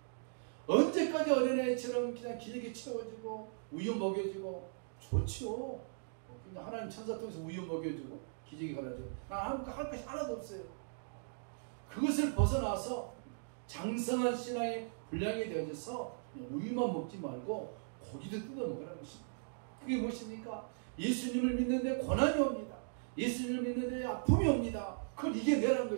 언제까지 어린아이처럼 그냥 기저귀 채워지고 우유 먹여주고 좋지요. 하나님 천사 통해서 우유 먹여주고 기저귀 갈아주고 난 할 것이 하나도 없어요. 그것을 벗어나서 장성한 신앙의 분량이 되어져서 우유만 먹지 말고 고기도 뜯어 먹으라는 것입니다. 그게 무엇입니까? 예수님을 믿는데 고난이 옵니다. 예수님을 믿는데 아픔이 옵니다. 그걸 이겨내라는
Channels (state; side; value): silent; left; digital silence